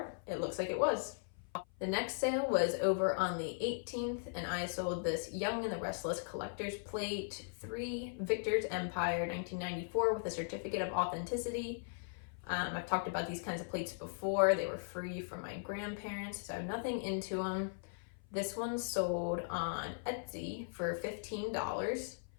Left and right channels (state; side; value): silent; right; 52 dB below the other